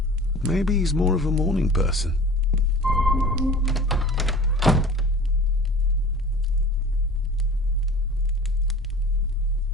Maybe he's more of a morning person.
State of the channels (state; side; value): normal; both; correlation 0.41